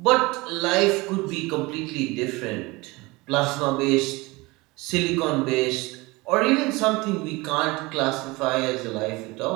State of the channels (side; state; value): left; quieter; 23.1 dB